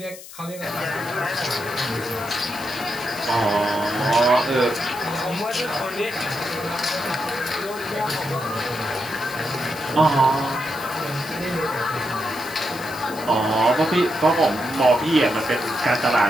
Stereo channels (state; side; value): noise; left; hiss, 16 dB below the sound